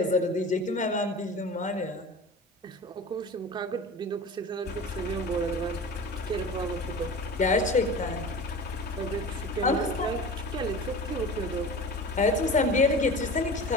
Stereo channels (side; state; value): both; normal; correlation 0.35